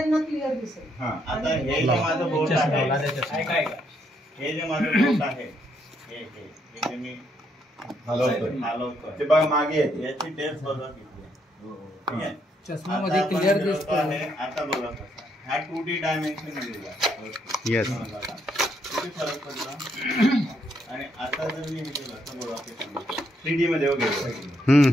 क्लिअर दिसेल. आता हे जे माझं बोट आहे, हे जे माझं बोट आहे हे जे मी हलवतोय ते बघा मागे येते. याची टेस्ट बघा किती ठीक आहे. चष्मामध्ये क्लिअर दिसतं. आता बघा कसा हा 2D डायमेन्शन दिलेला येस. किती फरक पडला. आणि आता जर मी हे केलं तर बघा 3D मध्ये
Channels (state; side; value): normal; both; correlation 0.74